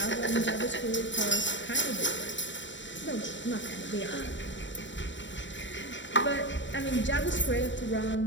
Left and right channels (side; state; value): right; late; 0.54 ms